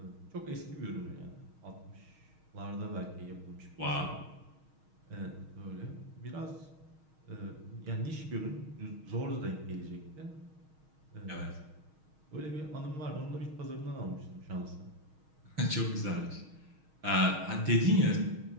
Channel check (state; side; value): late; left; 6.4 ms